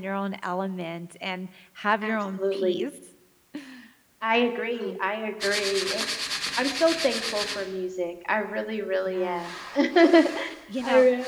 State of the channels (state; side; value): identical; both; correlation 1.00